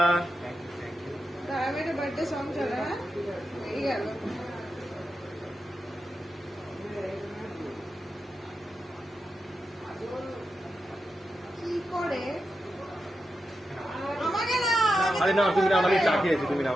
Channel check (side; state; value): both; normal; correlation 0.88